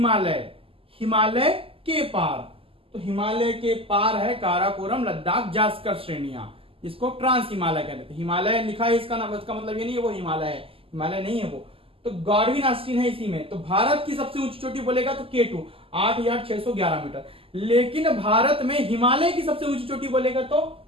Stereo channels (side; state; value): left; late; 0.26 ms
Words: हिमालय के पार। तो हिमालय के पार है काराकोरम, लद्दाख, जास्कर श्रेणियां, इसको ट्रांस हिमालय कहते हैं। हिमालय लिखा है इसका नाम, इसका मतलब ये नहीं है वो हिमालय है, हिमालय नहीं है वो। तो गार्डविन आइलैंड है इसी में। तो भारत की सबसे ऊंची चोटी बोलेगा तो K2 8,611 मीटर। लेकिन भारत में हिमालय की सबसे ऊंची चोटी बोलेगा तो